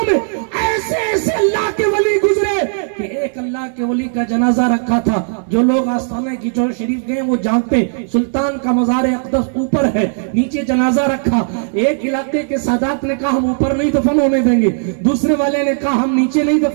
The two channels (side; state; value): left; silent; digital silence